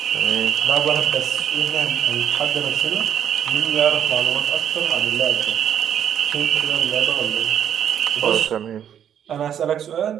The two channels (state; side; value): quieter; left; 9.4 dB